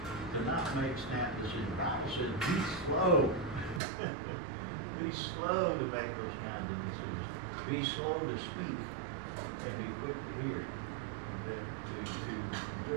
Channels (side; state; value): left; drops out; at 3.8 s